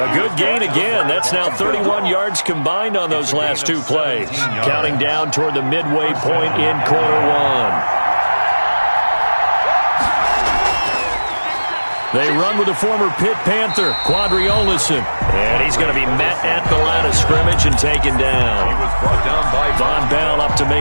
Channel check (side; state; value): both; inverted; correlation -1.00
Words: good gain again. That's now 31 yards combined on those last 2 plays. Counting down toward the midway point in quarter 1. They run with the former Pitt Panther, Quadri Olison. And he's going to be met at the line of scrimmage and taken down. He was brought down by Von Bell up to